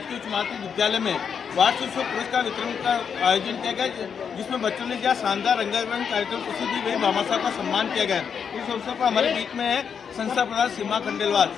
उच्च माध्यमिक विद्यालय में वार्षिक पुरस्कार वितरण का आयोजन किया गया, जिसमें बच्चों ने जहाँ शानदार रंगारंग कार्यक्रम प्रस्तुत दी, वही भामा साहब का सम्मान किया गया। इस अवसर पर हमारे बीच में है संस्था प्रधान सीमा खंडेलवाल,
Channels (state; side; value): quieter; right; 7.0 dB